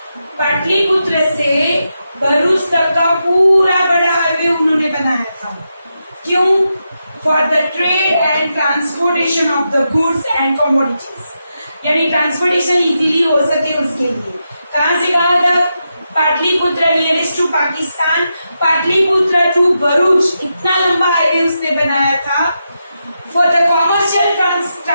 Pataliputra से भरूच तक का पूरा बड़ा हाईवे उन्होंने बनाया था। क्यों? For the trade and transportation of the goods and commodities, यानी ट्रांसपोर्टेशन इजीली हो सके उसके लिए। कहां से कहां तक? Pataliputra nearest to Pakistan, Pataliputra to Bharuch, इतना लंबा हाईवे उसने बनाया था। For the commercial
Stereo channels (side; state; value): both; inverted; correlation -0.86